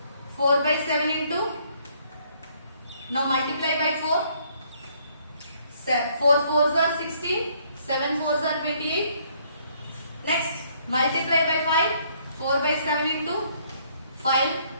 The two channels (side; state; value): both; inverted; correlation -0.66